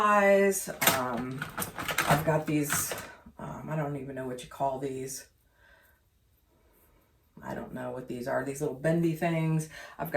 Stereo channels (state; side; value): identical; both; correlation 1.00